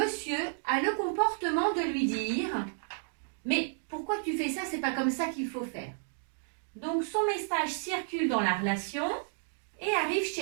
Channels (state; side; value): silent; left; digital silence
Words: a le comportement de lui dire « Mais pourquoi tu fais ça? C'est pas comme ça qu'il faut faire. » Donc son message circule dans la relation et arrive